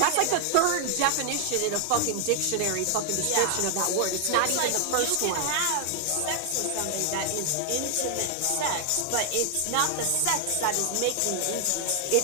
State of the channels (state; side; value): different; both; correlation 0.00